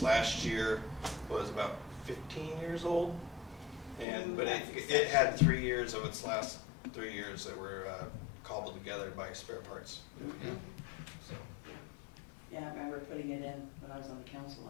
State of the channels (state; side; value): drops out; right; at 4.0 s